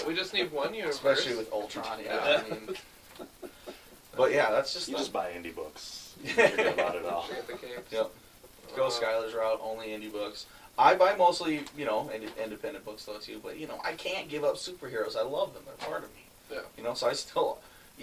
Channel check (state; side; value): identical; both; correlation 1.00